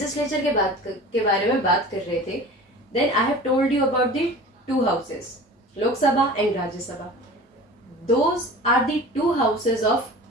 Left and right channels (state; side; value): normal; both; correlation 0.39